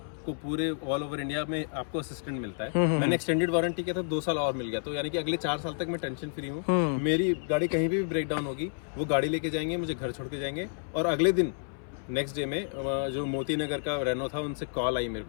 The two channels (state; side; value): silent; right; 58 dB below the other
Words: पूरे ऑल ओवर इंडिया में आपको असिस्टेंट मिलता है। मैंने एक्सटेंडेड वारंटी किया था, 2 साल और मिल गया। तो यानी कि अगले 4 साल तक मैं टेंशन फ्री हूँ। मेरी गाड़ी कहीं भी ब्रेक डाउन होगी, वो गाड़ी लेके जाएंगे, मुझे घर छोड़ के जाएंगे, और अगले दिन नेक्स्ट डे में जो मोती नगर का रेनो था उनसे कॉल आई मेरे